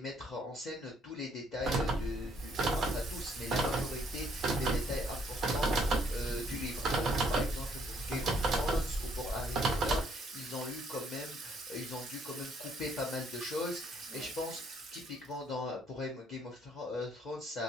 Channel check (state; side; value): normal; both; correlation 0.66